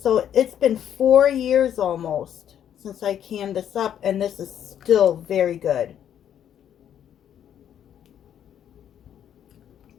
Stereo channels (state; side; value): quieter; right; 9.8 dB